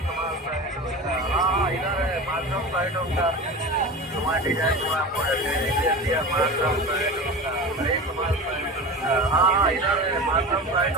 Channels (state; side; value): normal; both; correlation 0.30